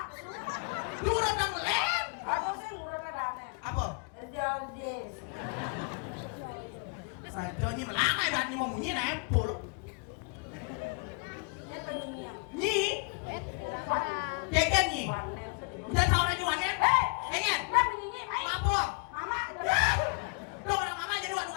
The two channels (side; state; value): right; quieter; 34.8 dB